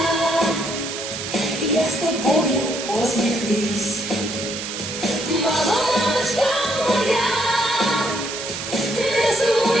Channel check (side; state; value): right; noise; hiss, 6 dB below the sound